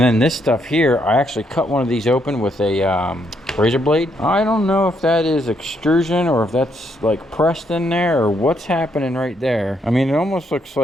then this stuff here, I actually cut one of these open with a razor blade. I don't know if that is extrusion or if that's like pressed in there or what's happening right there. I mean, it almost looks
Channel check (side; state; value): both; normal; correlation 0.74